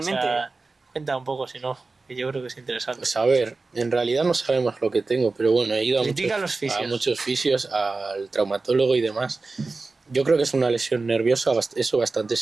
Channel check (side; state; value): left; quieter; 3.7 dB